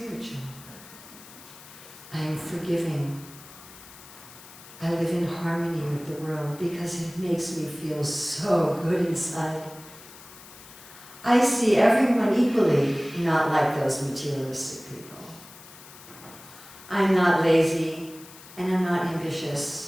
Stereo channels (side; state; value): left; noise; hiss, 19 dB below the sound